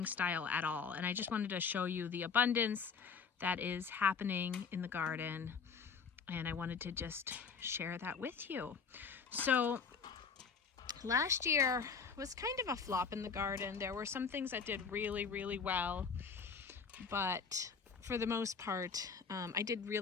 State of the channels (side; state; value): right; quieter; 5.8 dB